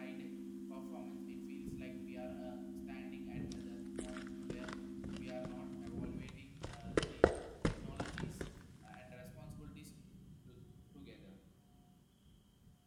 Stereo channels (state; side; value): identical; both; correlation 1.00